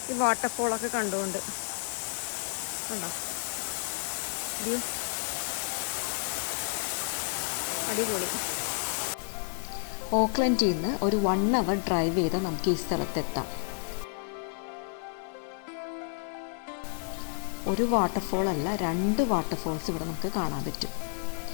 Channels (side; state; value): right; silent; digital silence